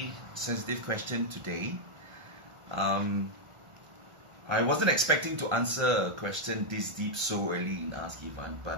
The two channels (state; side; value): late; left; 1.4 ms